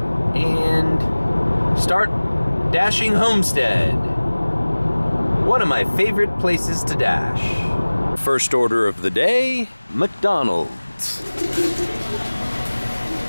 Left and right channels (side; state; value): both; inverted; correlation -1.00